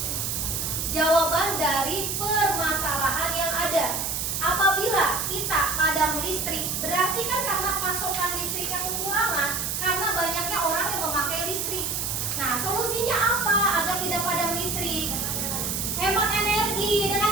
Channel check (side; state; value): right; noise; hiss, 1 dB below the sound